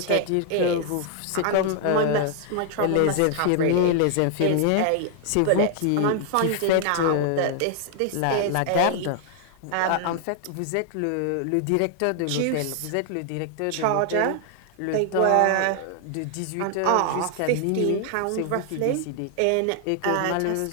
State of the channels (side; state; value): both; different; correlation 0.00